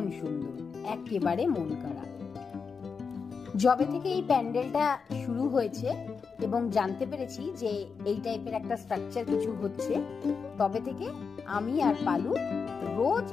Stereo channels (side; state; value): right; quieter; 5.5 dB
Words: সুন্দর, একেবারে মন কাড়া। যবে থেকে এই প্যান্ডেলটা শুরু হয়েছে এবং জানতে পেরেছি যে এই টাইপের একটা স্ট্রাকচার কিছু হচ্ছে, তবে থেকে আমি আর পালু রোজ